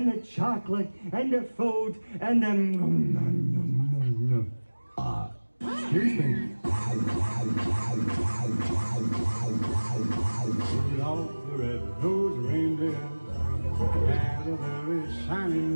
the chocolate, and the food, and the... excuse me. Rudolph the red-nosed reindeer had a very shiny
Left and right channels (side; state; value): both; inverted; correlation -1.00